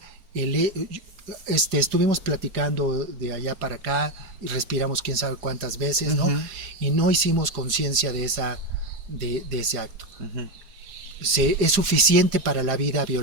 estuvimos platicando de allá para acá y respiramos quién sabe cuántas veces, ¿no? Y no hicimos conciencia de ese acto. Es suficiente para la vida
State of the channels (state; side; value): late; left; 4.9 ms